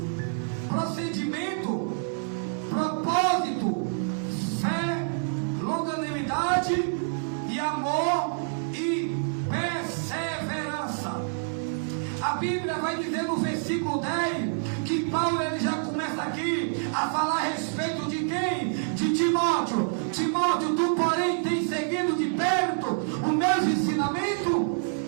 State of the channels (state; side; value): silent; left; 60 dB below the other